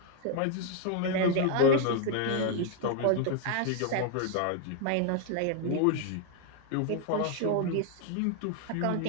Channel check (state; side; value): different; both; correlation 0.00